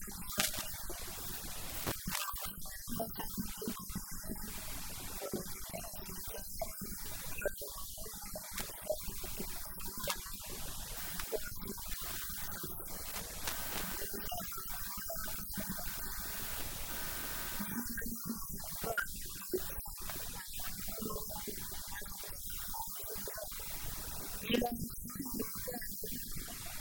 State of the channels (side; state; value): both; identical; correlation 1.00